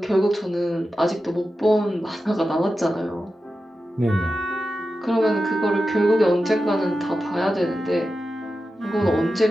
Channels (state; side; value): normal; both; correlation 0.92